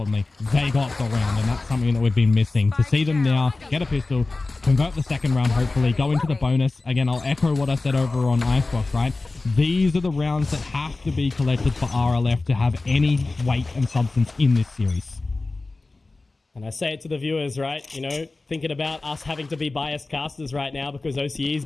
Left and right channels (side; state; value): right; quieter; 3.4 dB